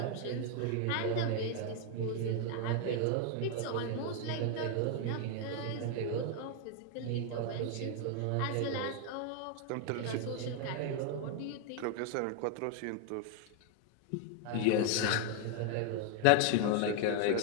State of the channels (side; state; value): both; different; correlation 0.01